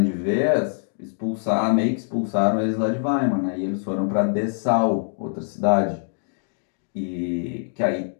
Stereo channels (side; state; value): right; silent; digital silence